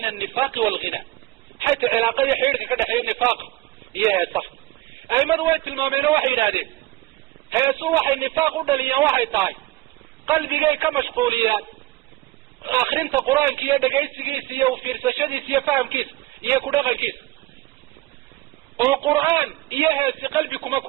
an-nifaaq wal-ghina xayta cilaaqa iyo xiriirka ka dhaxeeya nifaaq iyo heesaha aimadu way tilmaameen oo waxay yidhaahdeen heesu waxay nifaaq u dhaliyaan waxay tahay qalbigay ka mashquuliyaan akrinta qur-aanka iyo dhegaysigiisa iyo fiirsashadiisa iyo fahamkiisa iyo ku dhaqankiisa oo qur'aan iyo heesi qalbi kuma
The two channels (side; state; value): left; quieter; 18.5 dB